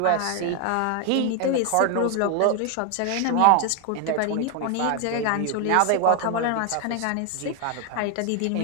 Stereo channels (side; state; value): both; different; correlation 0.00